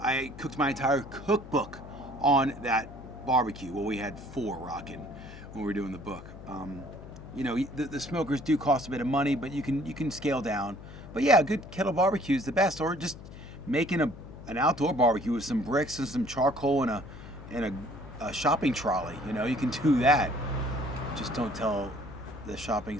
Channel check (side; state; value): left; noise; hum, 15 dB below the sound